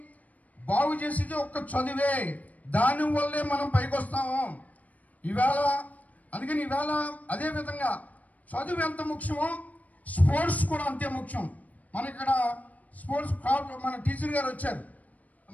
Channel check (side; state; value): right; late; 0.073 ms